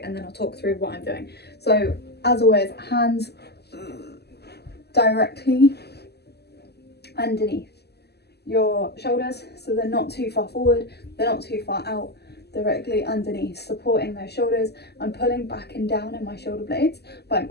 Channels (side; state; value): right; late; 0.47 ms